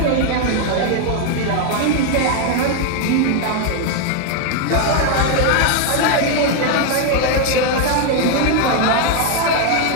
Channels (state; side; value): different; both; correlation 0.01